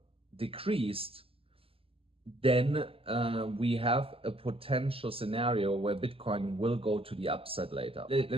decreased. Then we have a potential scenario where Bitcoin will go to the upside later. Let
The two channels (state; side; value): late; left; 0.27 ms